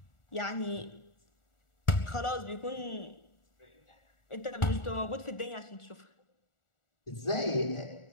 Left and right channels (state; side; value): late; right; 1.4 ms